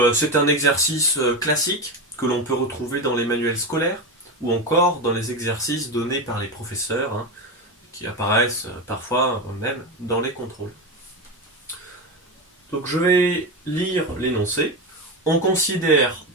c'est un exercice classique que l'on peut retrouver dans les manuels scolaires ou encore dans les exercices donnés par les professeurs qui apparaissent parfois même dans les contrôles. Donc je vais lire l'énoncé. On considère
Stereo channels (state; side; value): normal; both; correlation 0.17